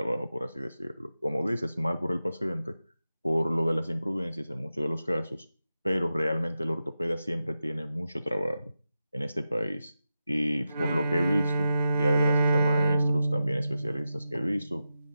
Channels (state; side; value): inverted; both; correlation -0.91